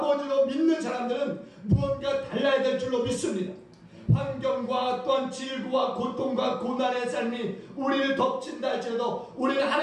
믿는 사람들은 무언가 달라야 될 줄로 믿습니다. 환경과 또한 질고와 고통과 고난의 삶이 우리를 덮친다 할지라도 우리는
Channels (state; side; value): identical; both; correlation 1.00